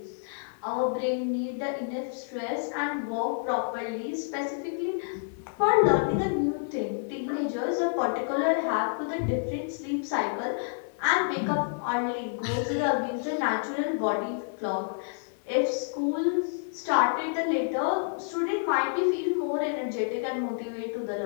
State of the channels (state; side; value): silent; right; 59 dB below the other